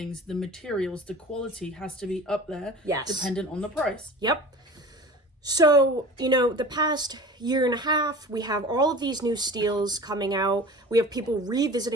the materials, the quality has to be up there, yes, dependent on the price. Yep. So, the past year and a half, we have all of these new steels coming out. We have people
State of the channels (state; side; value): normal; both; correlation 0.39